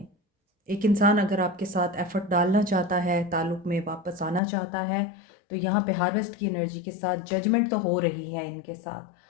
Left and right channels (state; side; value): drops out; right; at 4.4 s